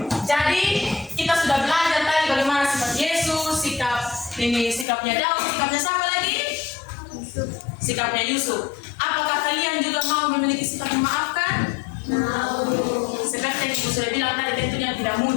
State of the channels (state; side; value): drops out; right; at 4.9 s